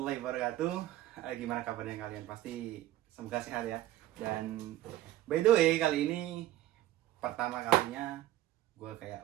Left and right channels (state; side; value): quieter; left; 14.6 dB